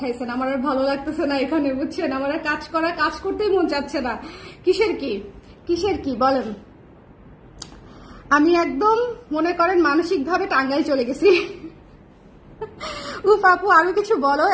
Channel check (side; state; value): both; identical; correlation 1.00